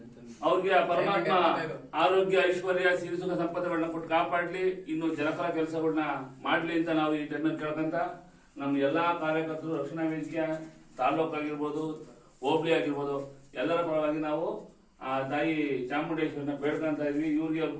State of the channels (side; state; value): both; identical; correlation 1.00